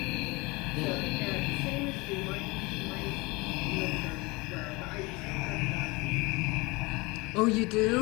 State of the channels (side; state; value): right; quieter; 24.8 dB